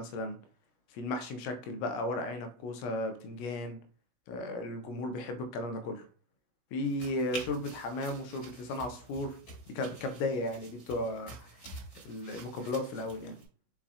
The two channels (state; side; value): late; right; 17 ms